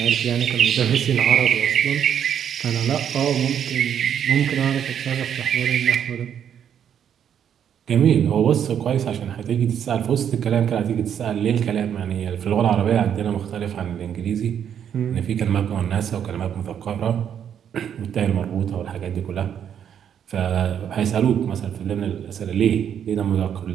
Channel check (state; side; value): quieter; left; 8.9 dB